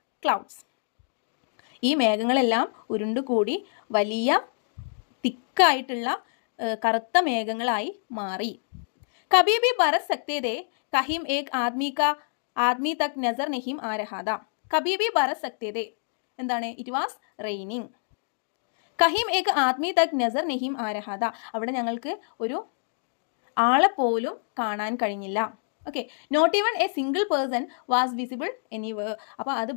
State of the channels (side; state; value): right; silent; digital silence